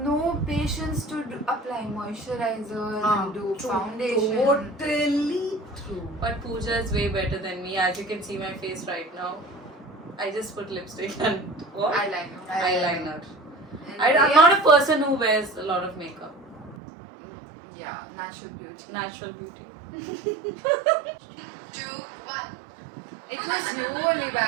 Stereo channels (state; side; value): drops out; left; at 16.8 s